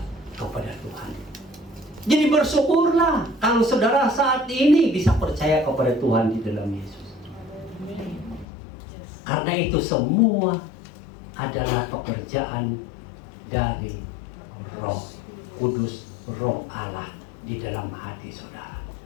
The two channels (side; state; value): right; drops out; at 8.5 s